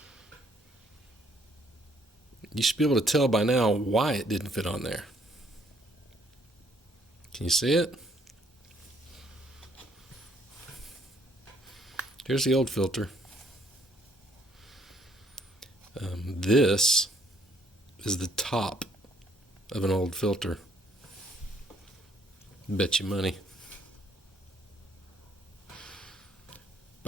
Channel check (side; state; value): both; normal; correlation 0.66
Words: You should be able to tell by now why it didn't fit on there. Can you see it? Here's the old filter. This is the top of an old filter. Bet you money.